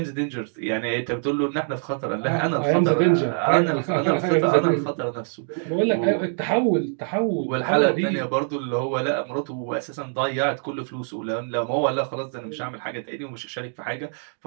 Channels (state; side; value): silent; left; digital silence